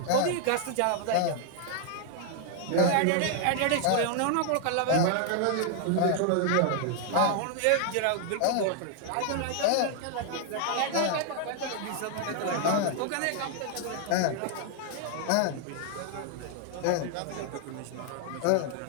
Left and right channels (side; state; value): both; different; correlation 0.00